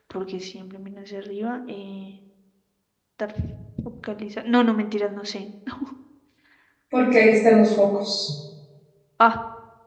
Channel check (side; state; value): both; identical; correlation 1.00